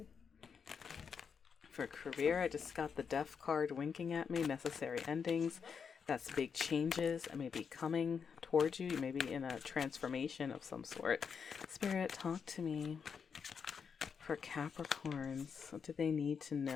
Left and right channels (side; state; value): right; quieter; 6.4 dB